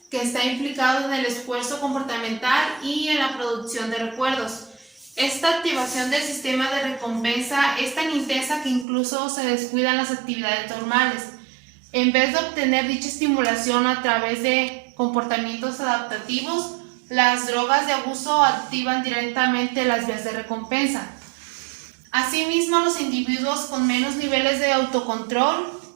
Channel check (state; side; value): drops out; left; at 8.8 s